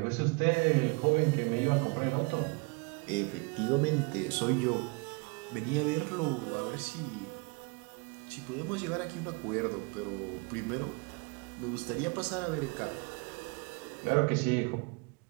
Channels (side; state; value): left; quieter; 30.5 dB